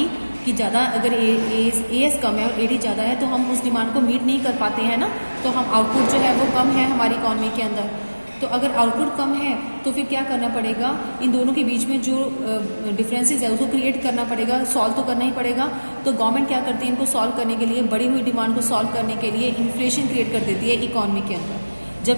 कि ज़्यादा अगर एएस कम है और एडी ज़्यादा है तो हम उस डिमांड को मीट नहीं कर पाते हैं ना, तो हम आउटपुट जो है वो कम है हमारी इकॉनमी के अंदर। तो अगर आउटपुट कम है तो फिर क्या करना पड़ेगा, इन दोनों के बीच में जो डिफरेंसेस है उसको क्रिएट करना पड़ेगा, सॉल्व तो करना ही पड़ेगा। तो गवर्नमेंट क्या करती है, इनको सॉल्व करने के लिए, बढ़ी हुई डिमांड को सॉल्व करने के लिए इन्फ्लेशन क्रिएट कर देती है इकॉनमी के अंदर।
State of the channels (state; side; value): inverted; both; correlation -1.00